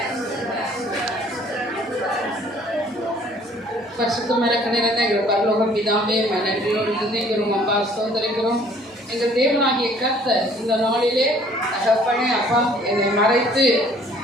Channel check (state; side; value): normal; both; correlation 0.57